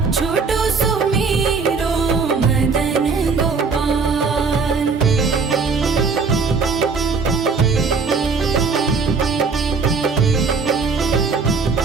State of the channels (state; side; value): quieter; left; 4.9 dB